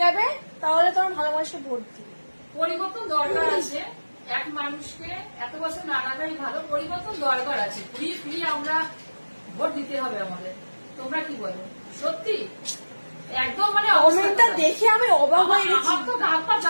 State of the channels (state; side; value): inverted; both; correlation -1.00